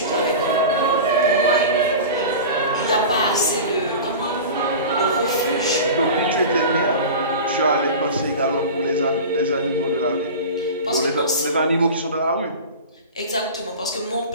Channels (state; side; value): inverted; both; correlation -0.32